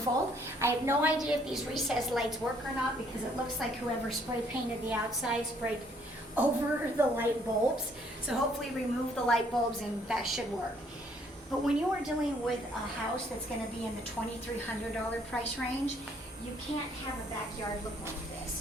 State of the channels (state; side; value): normal; both; correlation 0.65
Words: I have no idea if these recessed lights work or not because it looks like whoever spray painted the outside sprayed over the light bulbs. So hopefully remove the light bulbs and that should work. But when you are dealing with a house that's gonna be in the $2,300 price range, you can't have a backyard look like